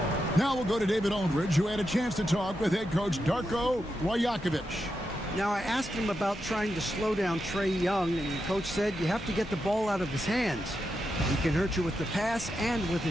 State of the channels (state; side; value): normal; both; correlation 0.86